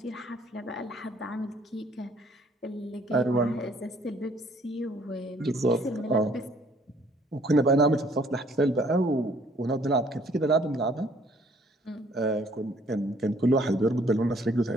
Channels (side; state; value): both; normal; correlation 0.61